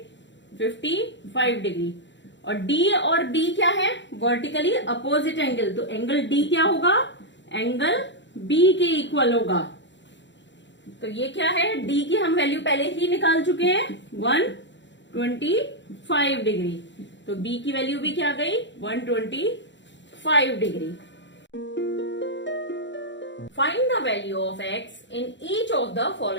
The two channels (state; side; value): late; right; 0.53 ms